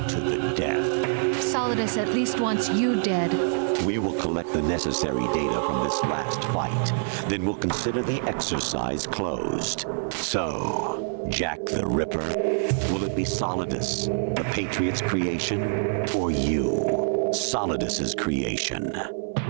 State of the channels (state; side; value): silent; left; digital silence